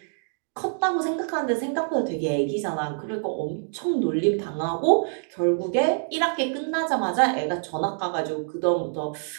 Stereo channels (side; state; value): left; silent; 61 dB below the other